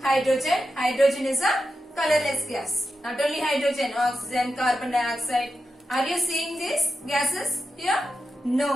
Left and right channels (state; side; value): normal; both; correlation 0.89